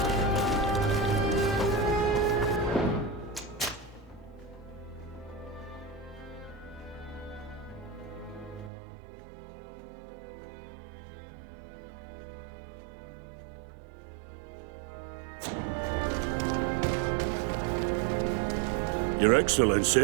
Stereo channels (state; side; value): drops out; left; at 8.7 s